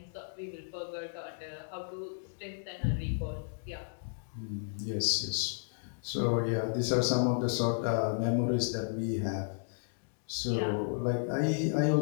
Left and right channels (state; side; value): silent; right; digital silence